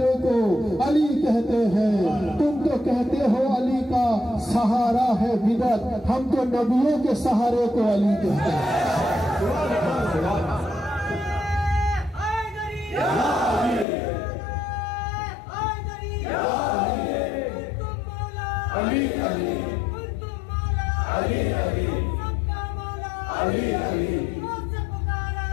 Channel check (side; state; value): right; drops out; at 13.9 s